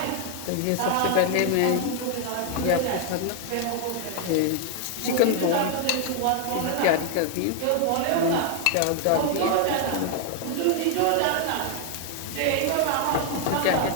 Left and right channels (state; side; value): different; both; correlation 0.00